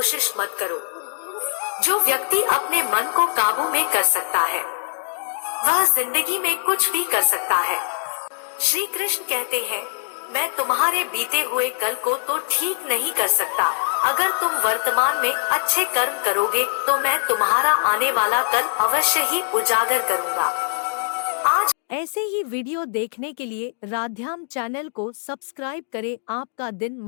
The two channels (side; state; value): right; silent; 64 dB below the other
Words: मत करो। जो व्यक्ति अपने मन को काबू में कर सकता है वह जिंदगी में कुछ भी कर सकता है। श्री कृष्ण कहते हैं, मैं तुम्हारे बीते हुए कल को तो ठीक नहीं कर सकता, अगर तुम वर्तमान में अच्छे कर्म करोगे तो मैं तुम्हारा आने वाला कल अवश्य ही उजागर करूंगा। आज ऐसे ही वीडियो देखने के लिए राध्याम चैनल को सब्सक्राइब करें। आपका दिन